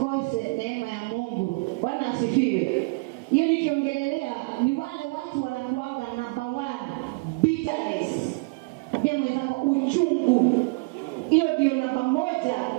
neema ya Mungu. Bwana asifiwe. Hiyo nikiongelelea ni wale watu wanakuanga number 1 bitterness. Ambia mwenzako uchungu. Hiyo ndio namba 1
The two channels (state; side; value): quieter; left; 29.2 dB